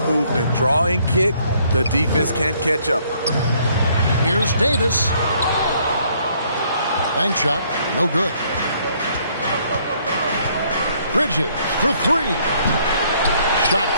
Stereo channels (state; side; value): inverted; both; correlation -0.65